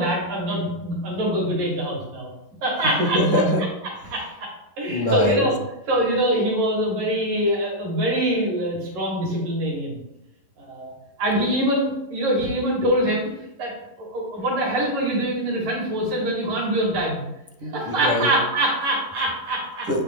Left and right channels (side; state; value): left; late; 11 ms